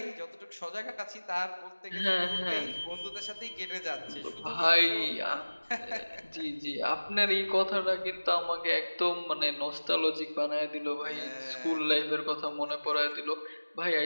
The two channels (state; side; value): inverted; both; correlation -1.00